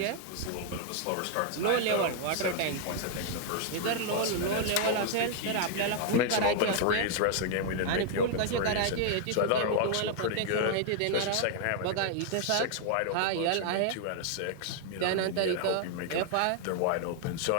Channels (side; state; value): both; different; correlation 0.00